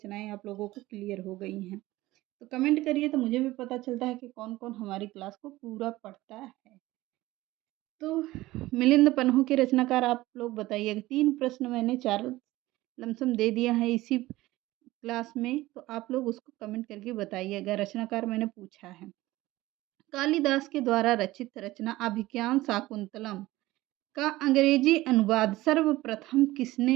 आप लोगों को क्लियर हो गई हैं। तो कमेंट करिए तो मुझे भी पता चलता है कि कौन कौन हमारी क्लास को पूरा पढ़ता है। तो मिलिंद पन्हू के रचनाकार आप लोग बताइएगा। 3 प्रश्न मैंने 4 लमसम दे दिया है इसी क्लास में, तो आप लोग उसको कमेंट करके बताइएगा। रचनाकार मैंने पूछा है। कालिदास के द्वारा रचित रचना अभिज्ञान शाकुंतलम का अंग्रेजी अनुवाद सर्वप्रथम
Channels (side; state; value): left; quieter; 17.8 dB